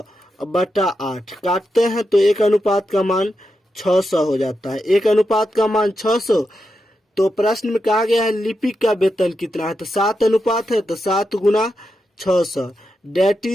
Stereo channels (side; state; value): both; normal; correlation 0.87